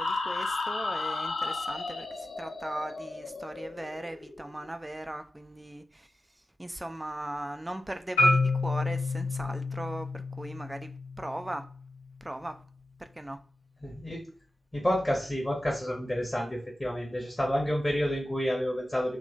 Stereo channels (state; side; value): normal; both; correlation 0.93